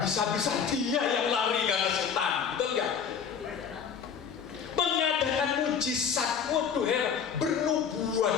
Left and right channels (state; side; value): quieter; right; 7.0 dB